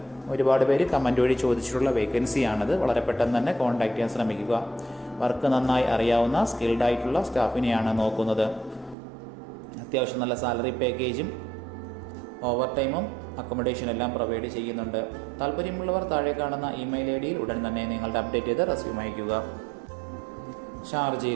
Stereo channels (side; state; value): left; drops out; at 9.0 s